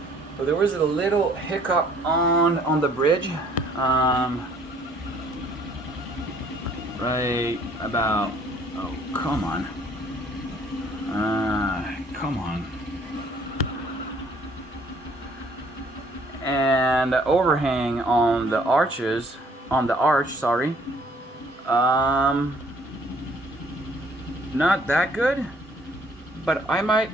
So there was a little hiccup on the bridge. Right about, oh, come on. Come on. And the overhang on the arches, on the arch, sorry. Not that good, but I might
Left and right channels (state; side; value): normal; both; correlation 0.60